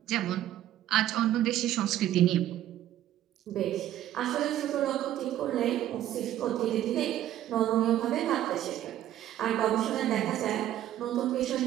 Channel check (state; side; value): quieter; left; 12.5 dB